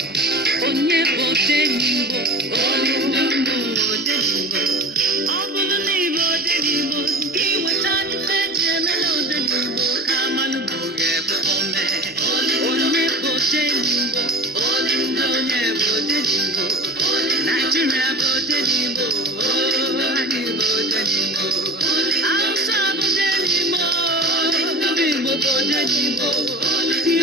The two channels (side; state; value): both; normal; correlation 0.35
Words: Onyeka Odenigbo, Odenigbo, Odenigbo. Ọ bụrụ na ịbụ Odenigbo, gị weta n'ife ji emela Odenigbo ka mmanụ bụ ga-ebe ome. Onyeka Odenigbo, Odenigbo, Onyeka Odenigbo. Nigeria bụ Odenigbo, anyị bụ Odenigbo. Hausa bụ Odenigbo, ndị Igbo bụ Odenigbo.